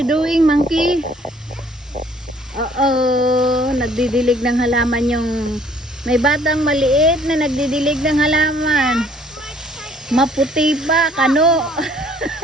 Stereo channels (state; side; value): normal; both; correlation 0.59